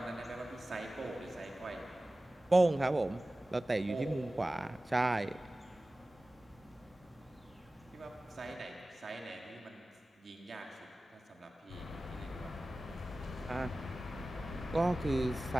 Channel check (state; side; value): normal; both; correlation 0.96